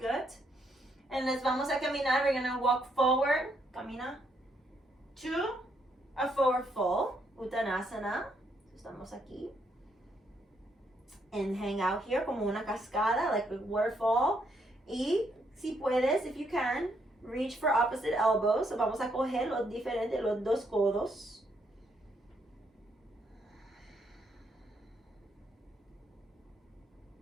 And les vamos a caminar. We're going to walk forward. Camina. To a forward fold. Uttanasana. Estamos aquí. And hang out here como una cascada, like a waterfall. Y si puedes, if you can, reach for opposite elbows. So vamos a coger los diferentes, los 2 codos.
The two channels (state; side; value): normal; both; correlation 0.74